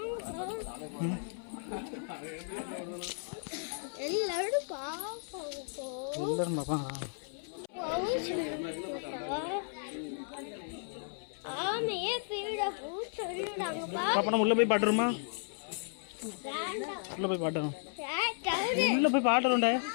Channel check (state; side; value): silent; right; 55 dB below the other